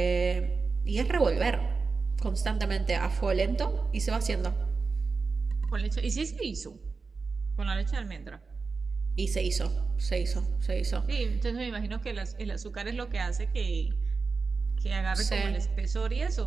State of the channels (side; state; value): left; quieter; 4.5 dB